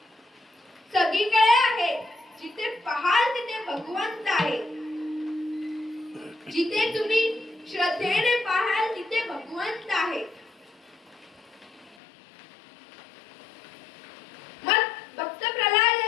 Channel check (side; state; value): right; drops out; at 12.0 s